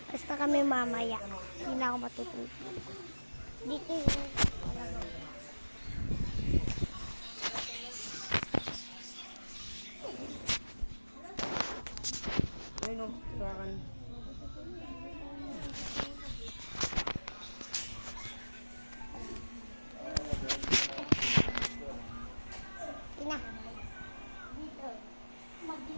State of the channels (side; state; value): both; inverted; correlation -1.00